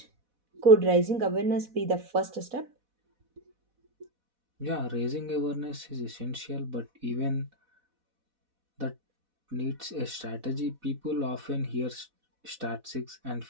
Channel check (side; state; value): left; late; 4.1 ms